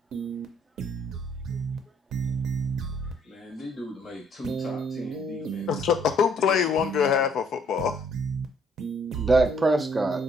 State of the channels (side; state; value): both; normal; correlation 0.65